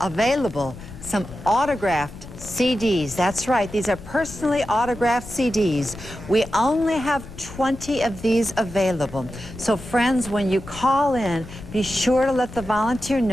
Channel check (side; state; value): left; noise; rumble, 14 dB below the sound